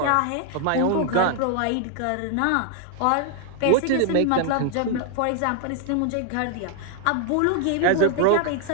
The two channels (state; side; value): different; both; correlation 0.00